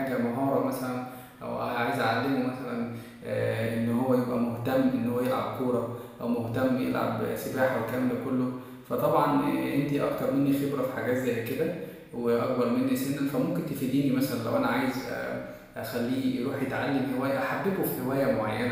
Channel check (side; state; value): both; identical; correlation 1.00